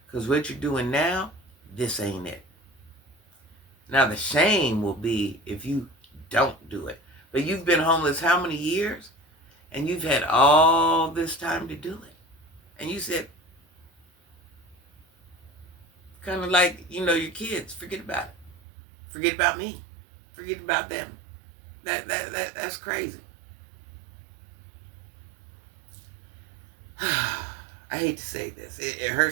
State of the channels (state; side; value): drops out; left; at 18.6 s